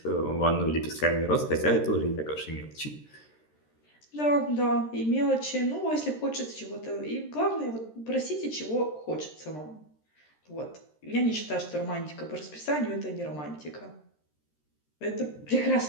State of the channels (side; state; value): right; late; 13 ms